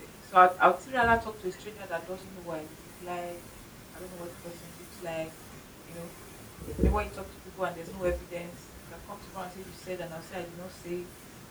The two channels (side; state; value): both; identical; correlation 1.00